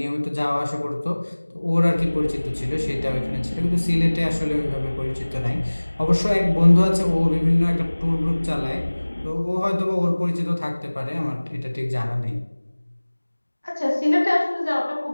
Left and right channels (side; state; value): both; inverted; correlation -1.00